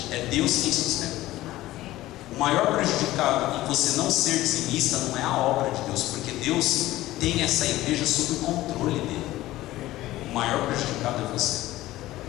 É Deus quem sustenta. O maior prejudicado em você não ser dizimista não é a obra de Deus, porque Deus tem essa igreja sob o controle dele. O maior prejudicado é você.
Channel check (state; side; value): quieter; right; 16.3 dB